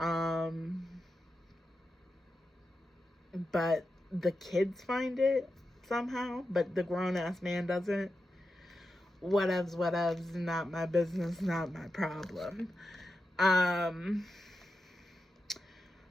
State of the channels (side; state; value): both; normal; correlation 0.89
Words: But the kids find it somehow, but the grown-ass man doesn't. Whatevs, not my business, not my problem.